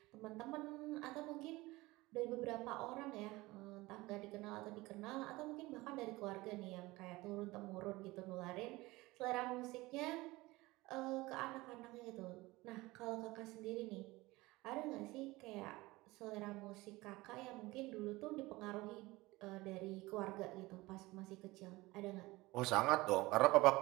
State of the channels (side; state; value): left; quieter; 20.6 dB